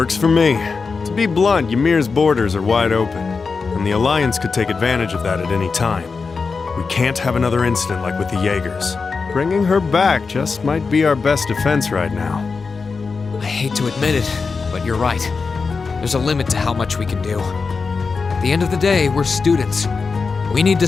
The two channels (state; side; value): quieter; right; 4.7 dB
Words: for me. To be blunt, Ymir's borders are wide open, and the Alliance could take advantage of that at any time. We can't have another incident like with the Jaegers. Bringing her back just might be our best defense right now. I hate to admit it, but you're right. There's a limit to how much we can do. At the end of the day, we're students. We need to